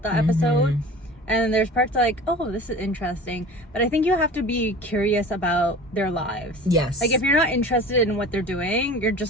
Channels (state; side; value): normal; both; correlation 0.40